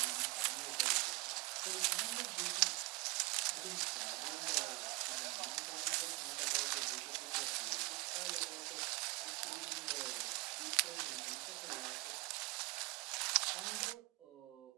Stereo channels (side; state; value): left; quieter; 24.3 dB